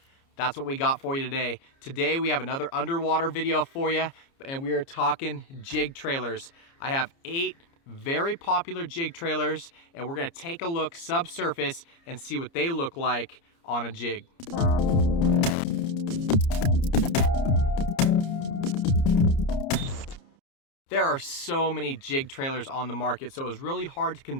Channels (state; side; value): late; right; 29 ms